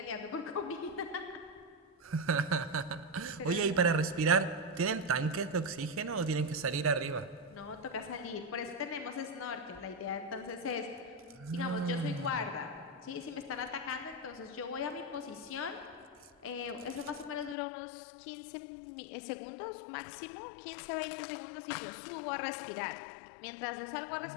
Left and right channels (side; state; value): right; drops out; at 17.6 s